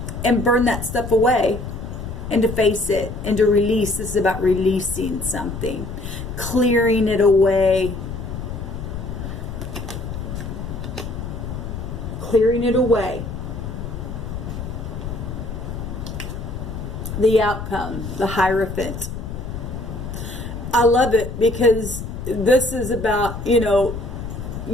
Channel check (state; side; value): noise; left; rumble, 7 dB below the sound